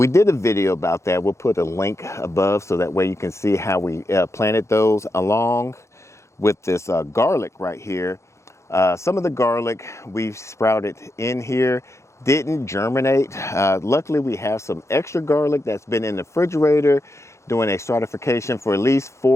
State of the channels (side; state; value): right; late; 0.14 ms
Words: did a video about that. We'll put a link above so that way you can see how we planted those along with this garlic right here. Some of the garlic we've sprouted in here didn't germinate. Luckily, we have some extra garlic that's been in the refrigerator doing a stratification for at least